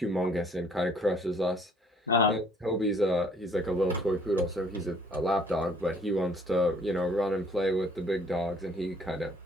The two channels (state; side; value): normal; both; correlation 0.60